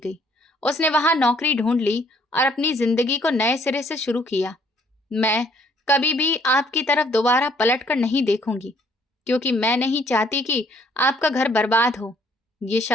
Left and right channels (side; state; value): both; normal; correlation 0.64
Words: उसने वहां नौकरी ढूंढ ली और अपनी जिंदगी को नए सिरे से शुरू किया। मैं कभी भी आपकी तरफ दोबारा पलट कर नहीं देखूंगी, क्योंकि मैं नहीं चाहती कि आपका घर बर्बाद हो। ये